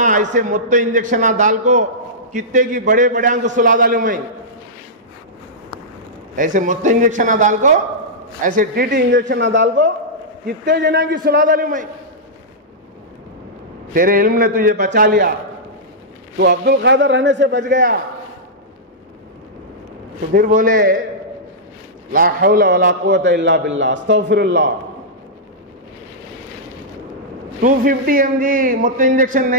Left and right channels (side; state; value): both; normal; correlation -0.12